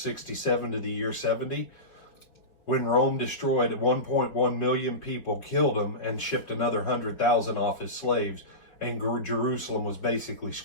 to the year 70, when Rome destroyed 1.1 million people, killed them, and shipped another 100,000 off as slaves, and Jerusalem was basically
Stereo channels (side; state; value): right; late; 4.9 ms